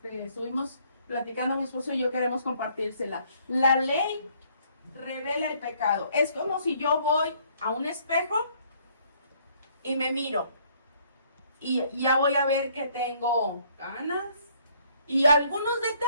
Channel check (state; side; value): inverted; both; correlation -0.64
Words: platicando mi esposo y yo, queremos compartírsela. La ley revela el pecado. Es como si yo voy a un espejo y me miro y ya voy a ver que tengo canas y algunos